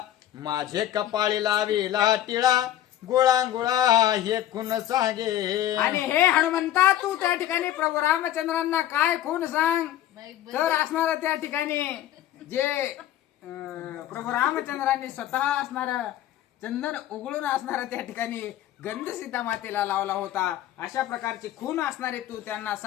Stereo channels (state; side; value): quieter; right; 12.5 dB